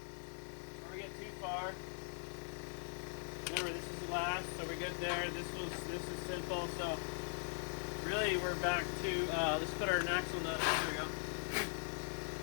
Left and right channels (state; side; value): silent; right; 50 dB below the other